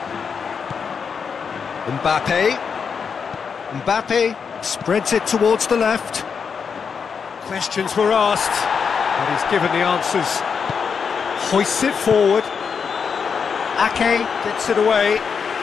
Mbappe spreads it towards the left. Questions were asked, but he's given the answers. Hoists it forward. Ake gets it away.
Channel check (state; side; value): quieter; right; 6.2 dB